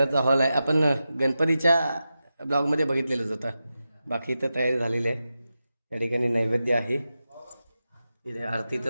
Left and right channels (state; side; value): inverted; both; correlation -0.91